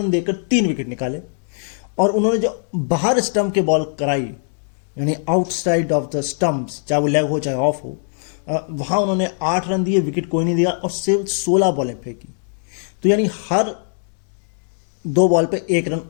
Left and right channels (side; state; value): right; silent; digital silence